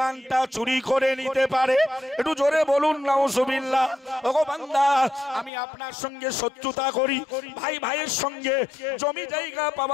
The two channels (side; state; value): right; drops out; at 5.5 s